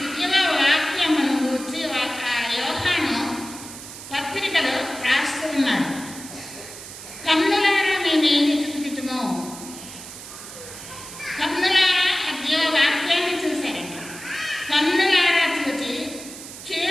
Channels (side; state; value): right; noise; hiss, 13 dB below the sound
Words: గూర్చి యోహాను పత్రికలో రాస్తూ ఉన్నాడు. కన్నులారా మేమేది చూచితుమో, కన్నులారా ఆ జీవవాక్యాన్ని చూశారంట. కన్నులారా చూచి